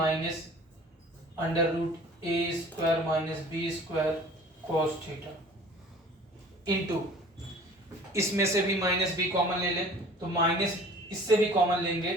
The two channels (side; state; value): both; normal; correlation 0.47